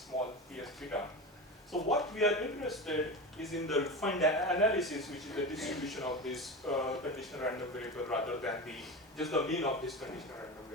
ps theta. So what we are interested is in the refined analysis, which is the distribution of this conditional random variable rather than just the mean of this conditional random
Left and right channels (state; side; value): normal; both; correlation 0.25